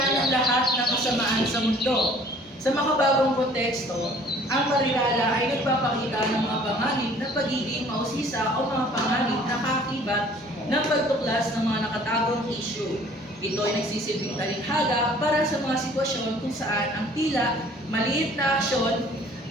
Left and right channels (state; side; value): normal; both; correlation 0.53